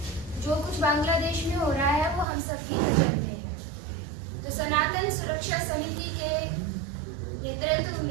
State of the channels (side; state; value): left; drops out; at 2.2 s